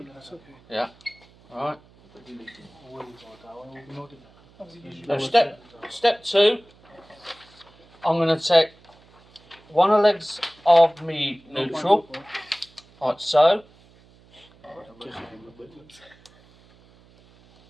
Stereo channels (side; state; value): right; noise; hum, 28 dB below the sound